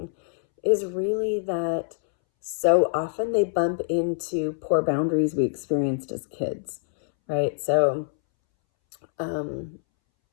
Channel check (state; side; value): silent; right; 62 dB below the other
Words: is really that so often they bump into poor boundaries we experienced as kids, right? Um,